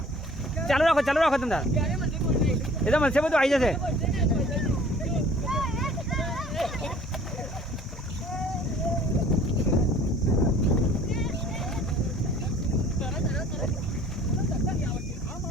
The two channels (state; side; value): normal; both; correlation 0.51